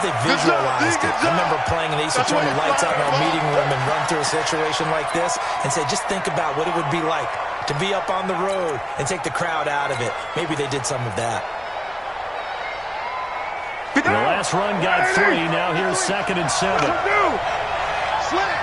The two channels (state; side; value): identical; both; correlation 1.00